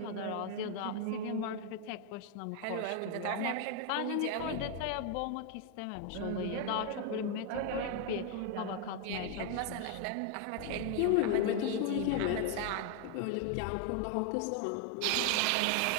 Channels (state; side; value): different; both; correlation 0.00